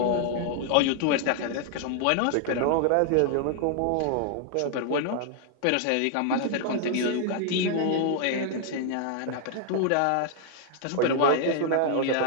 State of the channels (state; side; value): different; both; correlation 0.00